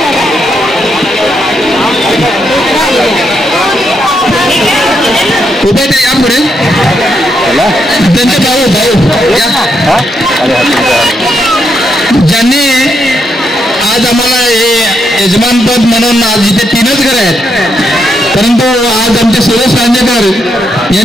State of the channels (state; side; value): normal; both; correlation 0.80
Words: उभे ते या पुढे त्यांचे भाऊ ज्यांनी आज आम्हाला हे यजमानपद म्हणून आज इथे 3च घर आहेत परंतु आज आमचे सुरेश रांजेकर